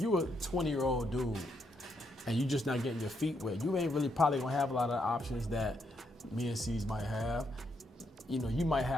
a 20-year-old dude and you just not getting your feet wet, you ain't really probably gonna have a lot of options that me and C's might have. you might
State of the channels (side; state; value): both; normal; correlation 0.77